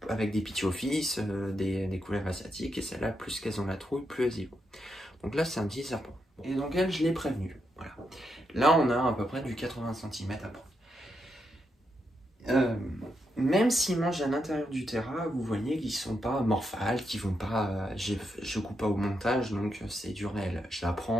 avec des pithiophyes, des couleuvres asiatiques, et celles-là, plus qu'elles ont la trouille, plus elles y vont. Donc là c'est un petit serpent. Et donc elle, je l'ai prévenu. Voilà. Là on a à peu près du 80 cm à prendre. Même s'ils mangent à l'intérieur du terrain, vous voyez qu'ils sont pas morphales, qu'ils vont pas. Je coupe pas au montage, donc c'est du réel. Je la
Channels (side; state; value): both; normal; correlation 0.82